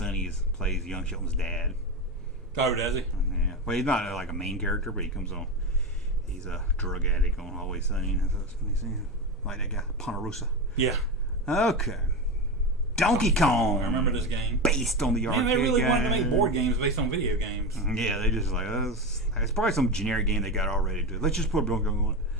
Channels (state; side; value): normal; both; correlation 0.19